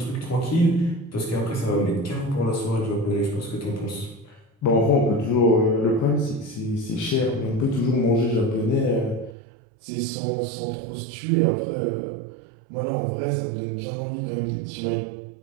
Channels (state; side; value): drops out; left; at 9.3 s